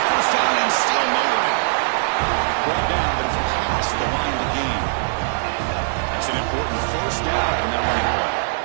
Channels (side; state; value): left; silent; 65 dB below the other